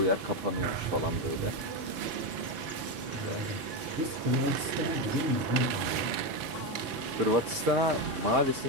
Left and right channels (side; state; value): left; late; 4.4 ms